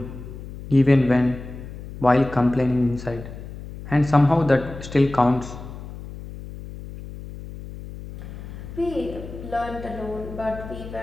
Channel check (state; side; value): noise; left; hum, 12 dB below the sound